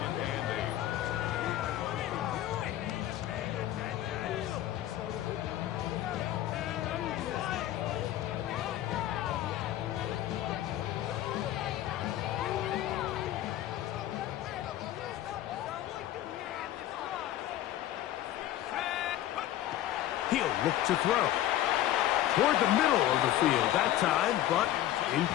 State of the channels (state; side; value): quieter; right; 13.2 dB